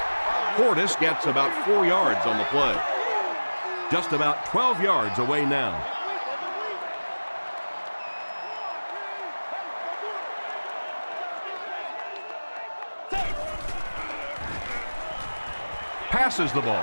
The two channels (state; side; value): inverted; both; correlation -1.00